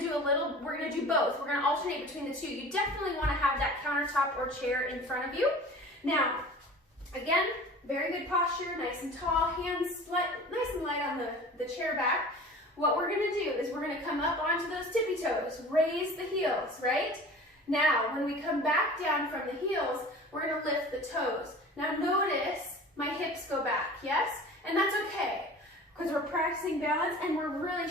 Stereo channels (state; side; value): normal; both; correlation 0.41